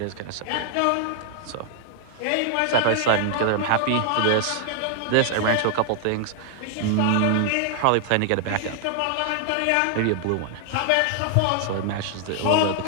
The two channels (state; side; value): different; both; correlation 0.00